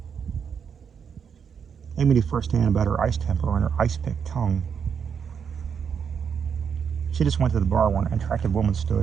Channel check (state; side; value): quieter; left; 7.0 dB